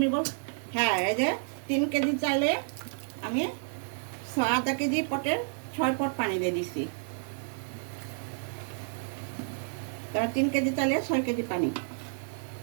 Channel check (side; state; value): left; silent; digital silence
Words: বল। হ্যাঁ, এই যে 3 কেজি চাইলে আমি আধা কেজি পটের 6 পট পানি দিয়ে দিছি। তারপর 3 কেজি চাইলে 6 কেজি পানি,